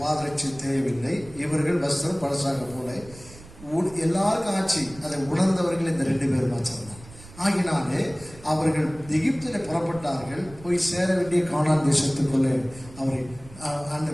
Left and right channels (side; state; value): right; noise; rumble, 19 dB below the sound